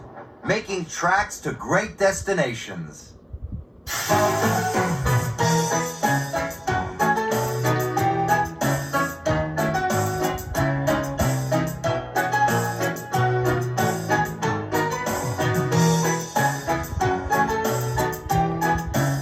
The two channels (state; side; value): identical; both; correlation 1.00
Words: making tracks to great destinations.